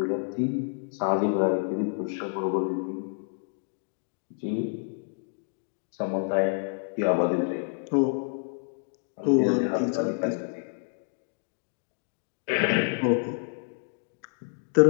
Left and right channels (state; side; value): silent; right; 59 dB below the other